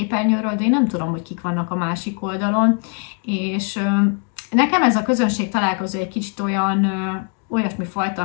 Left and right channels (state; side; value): quieter; right; 38.9 dB